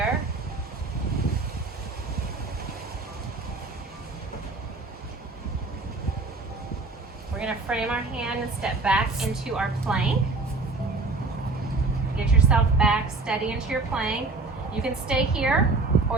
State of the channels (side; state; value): left; quieter; 3.6 dB